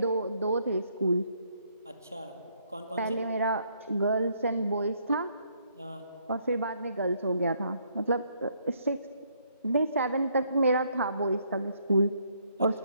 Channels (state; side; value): inverted; both; correlation -0.70